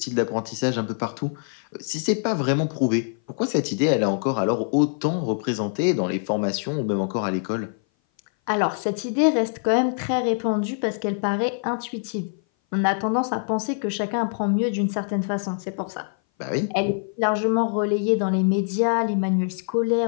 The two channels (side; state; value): right; silent; 58 dB below the other